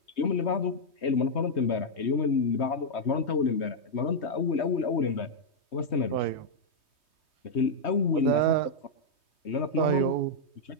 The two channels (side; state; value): right; late; 3.2 ms